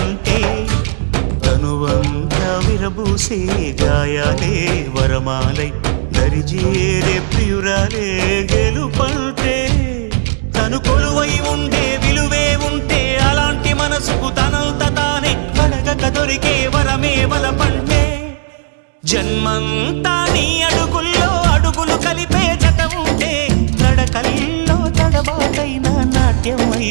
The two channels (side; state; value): left; silent; digital silence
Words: తనువంతా విరబూసే గాయాలే వరమాలై దరిజేరే ప్రియురాలే గెలుపంటే తను కొలువై ఉండే విలువే ఉంటే అలాంటి మనసుకు తనంత తానే అడగక దొరికే వరమే వలపంటే జన్మంతా నీ అడుగుల్లో అడుగులు కలిపే జత ఉంటే నడకల్లో తడబాటైన నాట్యం